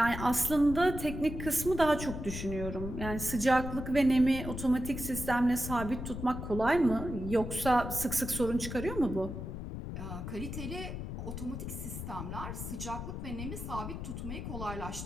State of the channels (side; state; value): left; noise; rumble, 6 dB below the sound